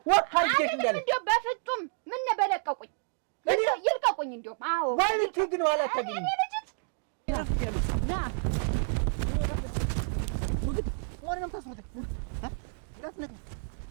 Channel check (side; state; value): left; silent; digital silence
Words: ወካርጀሽ እንዳለ እንደው በፍጹም ምን በለቀቁኝ ይልቀቁኝ። እንደው አዎ ማለት ግን ዋላ ታገኝ እኔ ልጅት ና ወረንም ታስሩት ዳትነት